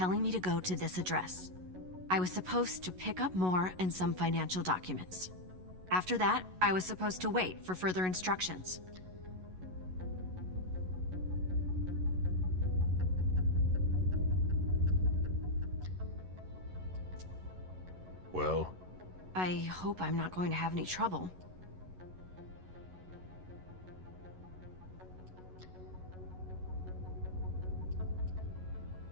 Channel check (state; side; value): late; left; 11 ms